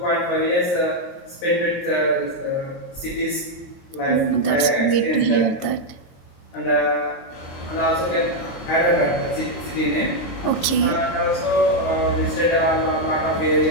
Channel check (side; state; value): right; late; 22 ms